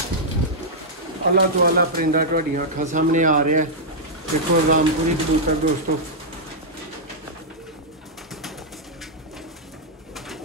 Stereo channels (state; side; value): normal; both; correlation -0.08